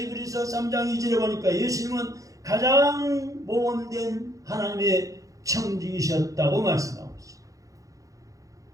3장 2절에 보니까 예수님은 가장 모범된 하나님의 청지기셨다고 말씀하고 있습니다.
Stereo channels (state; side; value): late; left; 0.16 ms